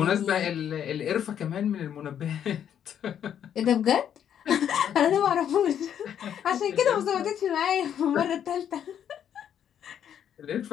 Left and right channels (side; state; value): right; quieter; 9.3 dB